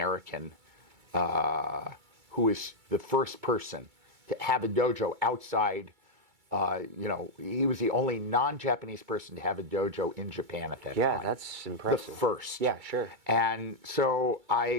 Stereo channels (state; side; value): late; left; 2.3 ms